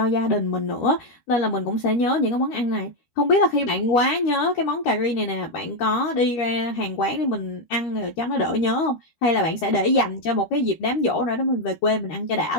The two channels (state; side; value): late; right; 13 ms